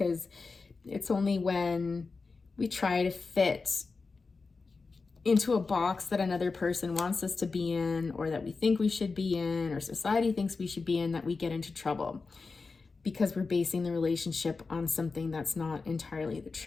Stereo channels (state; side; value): quieter; right; 4.3 dB